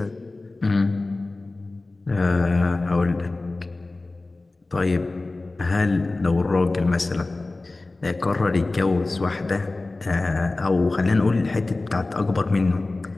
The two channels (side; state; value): right; quieter; 3.2 dB